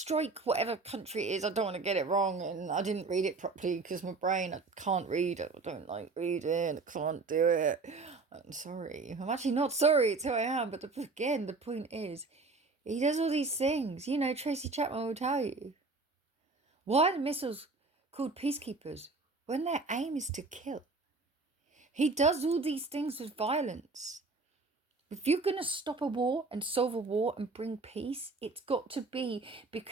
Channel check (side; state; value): left; quieter; 3.8 dB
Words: whatever country it is. I don't want to get it wrong, and I didn't read it properly because my brain, I can't read. I don't like reading. I can't do it. I'm sorry. I'm actually not sorry. It's who I am. But again, the point is, he does all these things. You know, Tracy Chapman will tell you. Why are the missiles called peacekeepers when their aim is to kill? He does all these things with violence. If you're going to stop a war and solve a war and bring peace, it's got to be